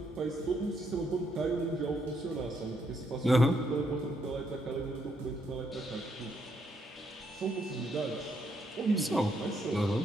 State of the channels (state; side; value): normal; both; correlation 0.75